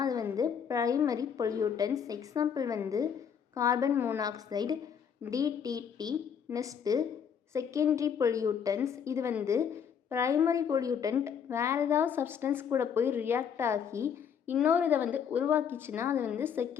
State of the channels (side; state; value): right; quieter; 7.6 dB